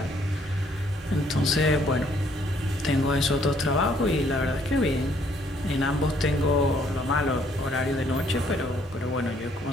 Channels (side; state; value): both; normal; correlation 0.65